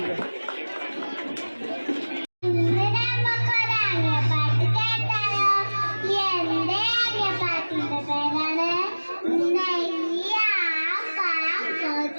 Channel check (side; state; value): both; inverted; correlation -1.00